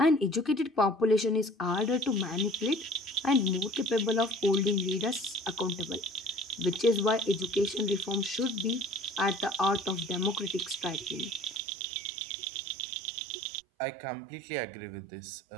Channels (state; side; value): drops out; left; at 11.6 s